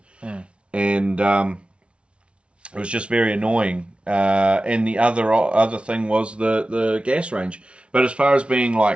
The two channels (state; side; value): late; left; 0.059 ms